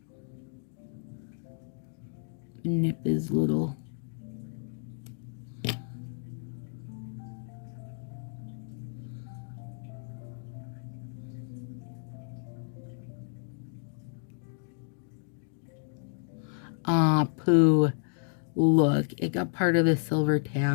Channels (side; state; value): right; silent; digital silence